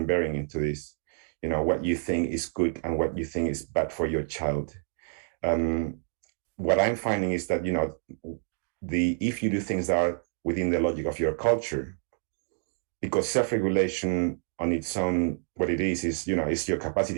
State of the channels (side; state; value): left; silent; 59 dB below the other